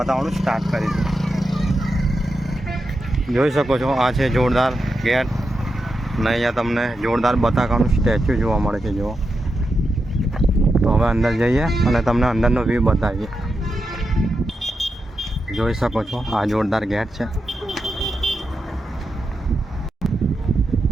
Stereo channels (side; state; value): both; normal; correlation 0.87